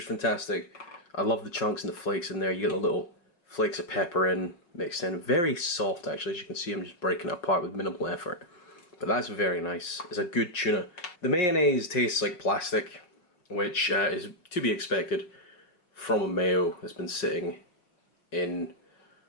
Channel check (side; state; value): right; late; 5.6 ms